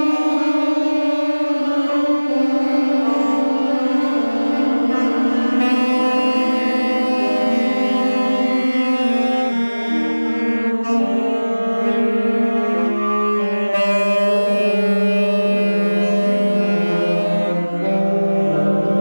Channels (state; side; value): inverted; both; correlation -1.00